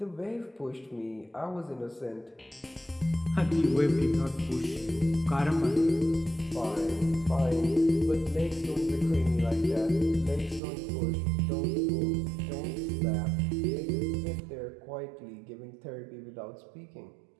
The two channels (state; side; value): drops out; left; at 10.6 s